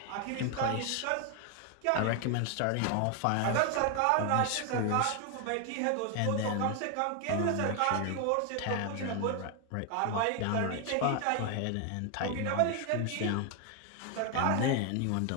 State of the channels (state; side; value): different; both; correlation 0.01